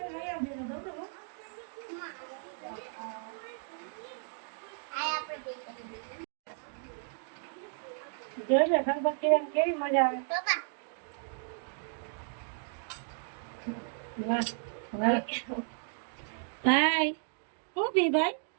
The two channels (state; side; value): silent; left; 55 dB below the other